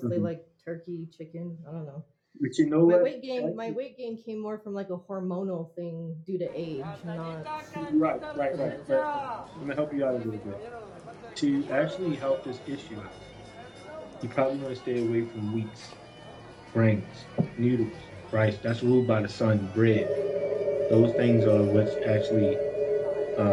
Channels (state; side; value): identical; both; correlation 1.00